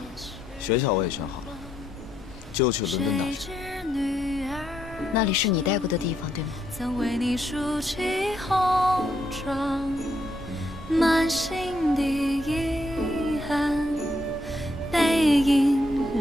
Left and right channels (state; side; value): normal; both; correlation 0.77